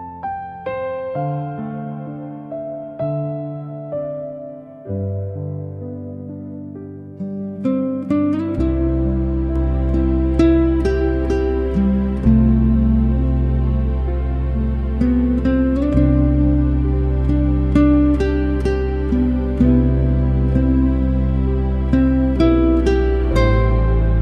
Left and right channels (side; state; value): both; identical; correlation 1.00